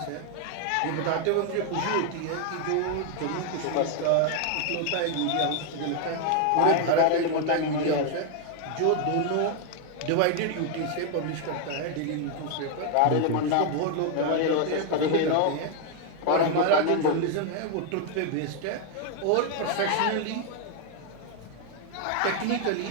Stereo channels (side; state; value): both; different; correlation 0.00